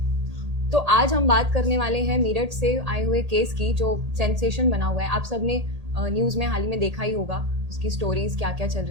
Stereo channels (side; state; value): left; late; 1.8 ms